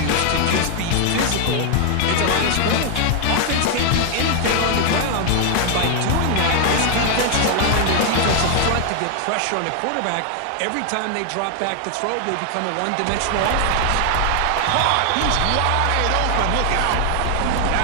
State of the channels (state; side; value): different; both; correlation 0.00